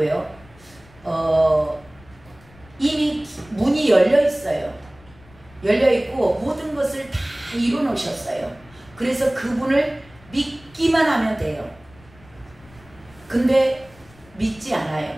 이미 문이 열려 있어요. 열려 있고 모든 것을 다 이뤄 놓으셨어요. 그래서 그분을 믿기만 하면 돼요. 근데 믿지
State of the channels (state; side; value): noise; left; rumble, 25 dB below the sound